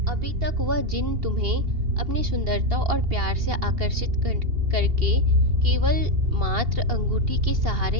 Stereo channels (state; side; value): late; left; 2.8 ms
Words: अभी तक वह जिन तुम्हें अपनी सुंदरता और प्यार से आकर्षित करके केवल मात्र अंगूठी के